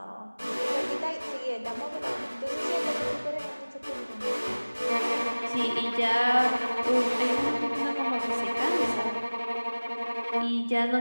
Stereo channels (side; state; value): both; inverted; correlation -1.00